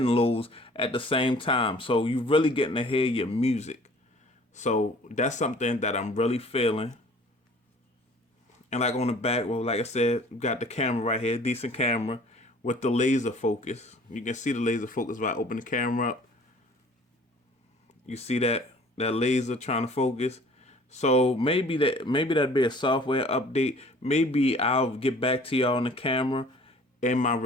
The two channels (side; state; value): both; normal; correlation 0.50